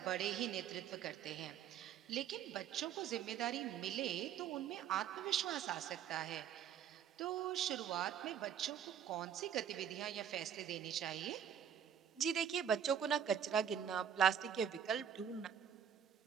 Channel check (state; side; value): quieter; left; 8.8 dB